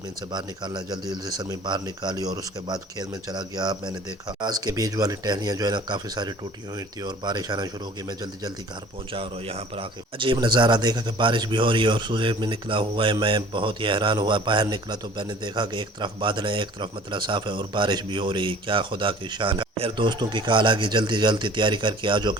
سے باہر نکالنا ہے۔ جلدی جلدی سرمی باہر نکالی اور اس کے بعد کھیت میں چلا گیا۔ میں نے دیکھا پیاز کے بیج والی ٹہنیاں جو ہے نا کافی ساری ٹوٹی ہوئی تھی اور بارش آنا شروع ہوگی۔ میں جلدی جلدی گھر پہنچا اور یہاں پر آ کے عجیب نظارہ دیکھا کہ بارش بھی ہو رہی ہے اور سورج بھی نکلا ہوا ہے۔ میں بہت ہی حیران ہوا۔ باہر نکلا تو میں نے دیکھا کہ ایک طرف بادل ہے، ایک طرف مطلب صاف ہے اور بارش بھی ہو رہی ہے۔ کیا خدا کی شان ہے۔ پھر دوستوں کی کال آ گئی، جلدی جلدی تیاری کر کے آجو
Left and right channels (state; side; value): normal; both; correlation 0.48